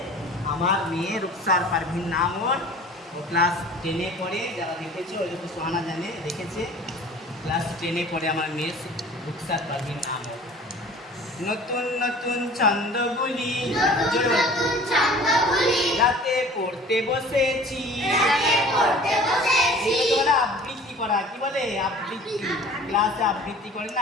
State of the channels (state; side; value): normal; both; correlation 0.46